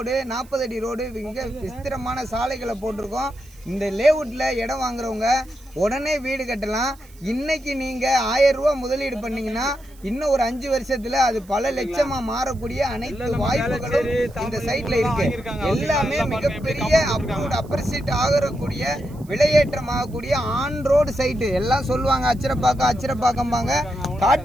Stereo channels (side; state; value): right; noise; hiss, 26 dB below the sound